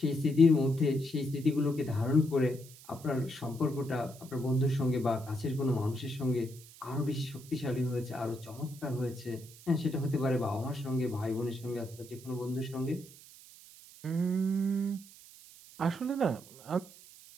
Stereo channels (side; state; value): right; noise; hiss, 20 dB below the sound